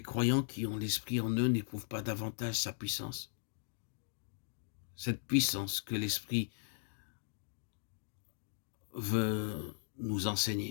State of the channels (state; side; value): silent; right; digital silence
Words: qui ont l'Esprit en eux n'éprouvent pas davantage sa puissance? Cette puissance que l'Esprit veut nous